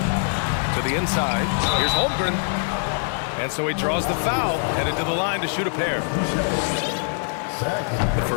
To the inside. Here's Holmgren. And so he draws the foul, headed to the line to shoot a pair. The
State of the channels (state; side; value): silent; right; digital silence